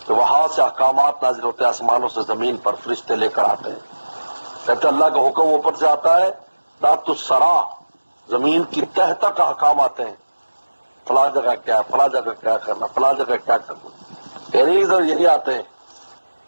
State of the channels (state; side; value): inverted; both; correlation -1.00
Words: کہ وہاں سے احکامات نازل ہوتے ہیں آسمانوں سے زمین پر، فرشتے لے کر آتے ہیں. کہتے اللہ کا حکم اوپر سے آتا ہے، تحت الثری، زمین کی تہ تک احکام آتے ہیں. فلاں جگہ کیا ہے، فلاں جگہ کیا کرنا، فلاں جگہ کیا کرنا. یہی آتے ہیں.